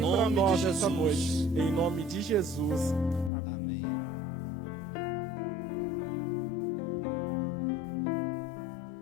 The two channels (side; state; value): right; drops out; at 3.3 s